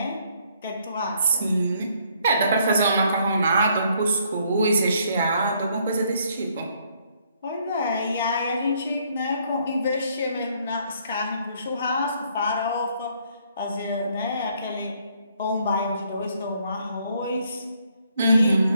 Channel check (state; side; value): inverted; both; correlation -0.68